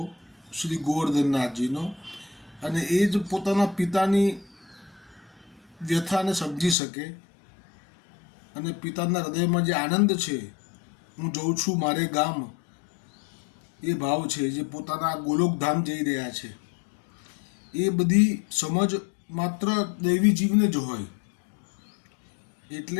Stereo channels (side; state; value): right; drops out; at 6.8 s